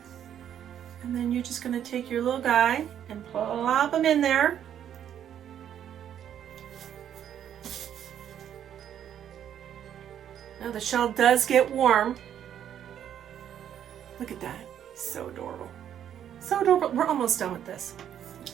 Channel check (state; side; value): quieter; left; 9.8 dB